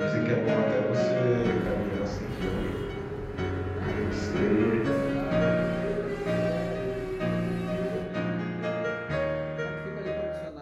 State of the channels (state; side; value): identical; both; correlation 1.00